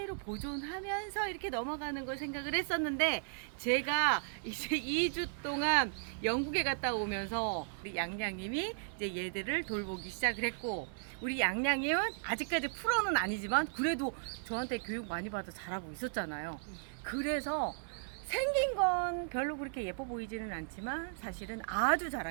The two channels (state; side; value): silent; left; 54 dB below the other